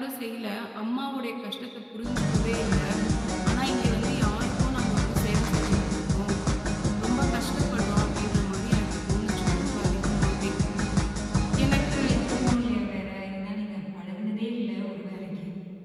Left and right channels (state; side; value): identical; both; correlation 1.00